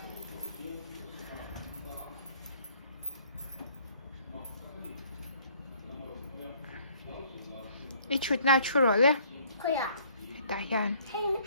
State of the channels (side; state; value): both; inverted; correlation -0.59